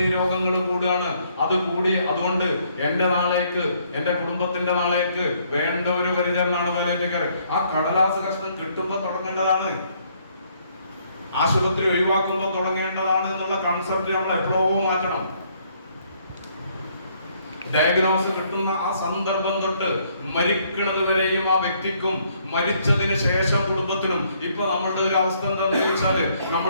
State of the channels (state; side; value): inverted; both; correlation -0.68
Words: രോഗങ്ങൾ കൂടുകയാണ്. അത് കൂടി അതുകൊണ്ട് എന്റെ നാളേക്ക്, എന്റെ കുടുംബത്തിന്റെ നാളേക്ക് വേണ്ട ഒരു പരിചരണമാണ് പാലിയേറ്റീവ് കെയർ. ആ കടലാസ് കഷ്ണം കിട്ടുമ്പോ തുടങ്ങേണ്ടതാണ്, ആശുപത്രി ഒഴിവാക്കുമ്പോൾ തുടങ്ങേണ്ടതാണ് എന്നുള്ള കൺസെപ്റ്റ് നമ്മൾ എപ്പോഴും മാറ്റണം. ഡയഗ്നോസ് കിട്ടുന്ന ആ സന്ദർഭം തൊട്ട് മരിക്കുന്നത് വരെയും ആ വ്യക്തിക്കും മരിച്ചതിന് ശേഷം കുടുംബത്തിനും. ഇപ്പൊ നമ്മളുടെ ഒരു അവസ്ഥ എന്താണെന്ന് ചോദിച്ചാല്,